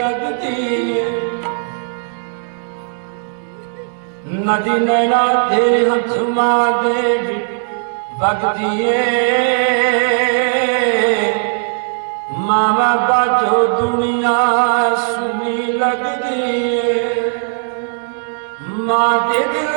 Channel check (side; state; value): left; silent; digital silence